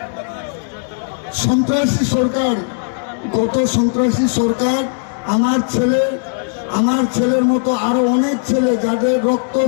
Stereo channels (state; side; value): silent; right; 68 dB below the other